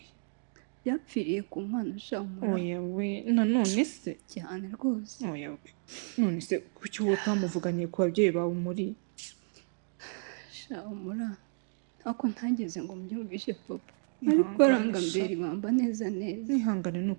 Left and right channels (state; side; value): silent; left; 57 dB below the other